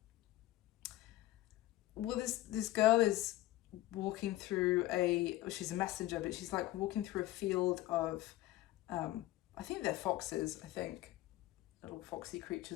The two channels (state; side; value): quieter; right; 16.4 dB